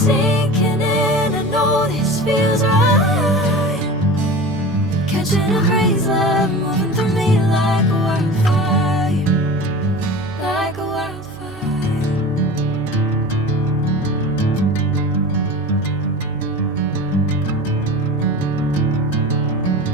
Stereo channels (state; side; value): noise; right; hum, 22 dB below the sound